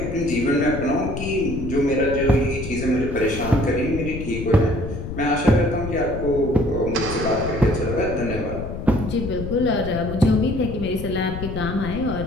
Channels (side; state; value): left; noise; rumble, 7 dB below the sound